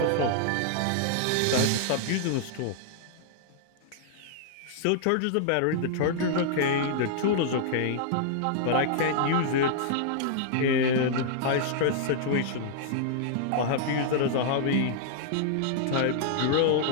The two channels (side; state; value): both; different; correlation -0.01